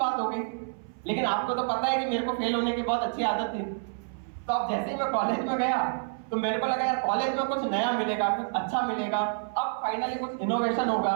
हो गई, लेकिन आपको तो पता है कि मेरे को फेल होने की बहुत अच्छी आदत थी। तो अब जैसे ही मैं कॉलेज में गया तो मेरे को लगा यार कॉलेज में कुछ नया मिलेगा, कुछ अच्छा मिलेगा, अब फाइनली कुछ इनोवेशन होगा,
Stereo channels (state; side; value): silent; left; 59 dB below the other